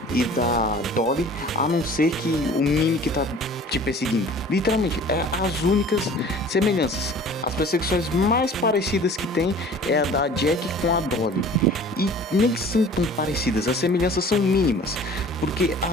e da Dolly, a não ser que o Mimic tá te perseguindo? Literalmente, é as únicas semelhanças. As perseguições mais parecidas que tem é a da Jack com a Dolly, e nem são tão parecidas, as semelhanças são mínimas, porque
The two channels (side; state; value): both; normal; correlation 0.46